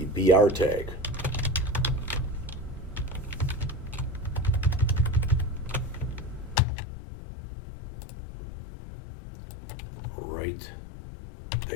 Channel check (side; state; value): right; drops out; at 6.6 s